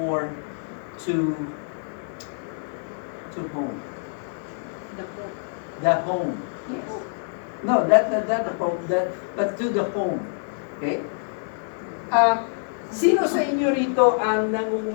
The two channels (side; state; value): right; silent; digital silence